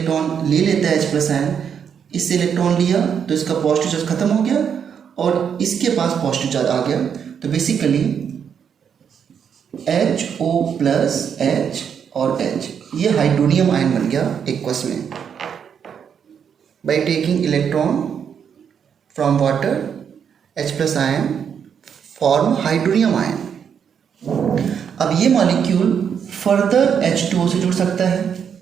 ले लेता है H प्लस आयन, इससे इलेक्ट्रॉन लिया तो इसका पॉजिटिव चार्ज खत्म हो गया और इसके पास पॉजिटिव चार्ज आ गया, तो बेसिकली HO प्लस H और H, ये हाइड्रोनियम आयन बन गया एक्वस में by taking electron from water, H plus ion form hydronium ion. अब ये मॉलिक्यूल फर्दर H2O से जुड़ सकता है,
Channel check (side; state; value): left; quieter; 7.6 dB